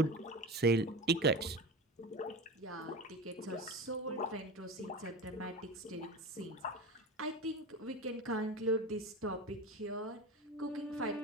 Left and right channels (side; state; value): both; normal; correlation 0.29